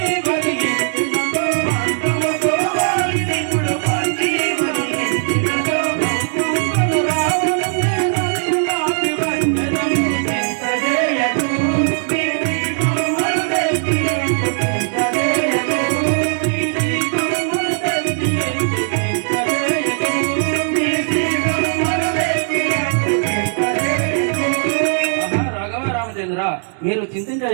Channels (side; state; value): left; silent; 63 dB below the other